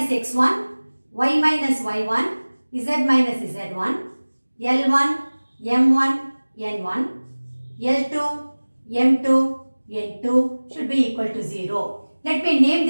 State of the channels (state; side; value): inverted; both; correlation -1.00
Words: x1, y minus y1, z minus z1, L1, M1, N1, L2, M2, N2 should be equal to 0. Let me name